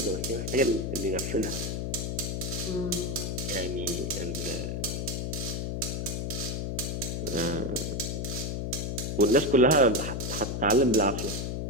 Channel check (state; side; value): noise; left; hum, 2 dB below the sound